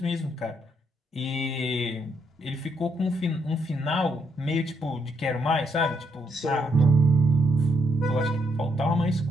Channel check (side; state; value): both; normal; correlation 0.74